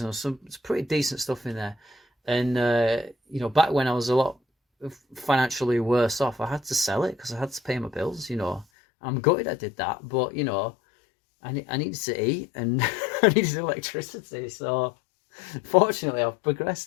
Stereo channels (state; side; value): drops out; right; at 8.7 s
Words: and there was it's pretty decent stuff in there. And, back when I was a lot financially worse off, I had to sell it because I had to pay my bills. I'm gutted I did that, but, I needed to eat and I needed electricity. So, fortunately, I've